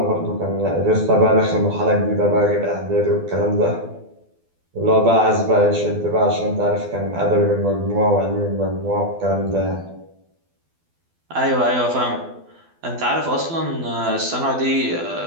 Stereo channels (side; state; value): left; late; 12 ms